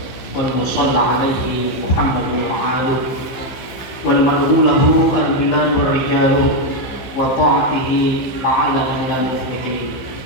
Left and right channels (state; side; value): late; right; 15 ms